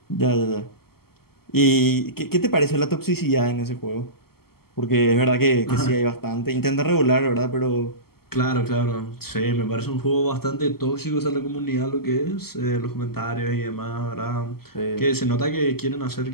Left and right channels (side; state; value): right; late; 0.95 ms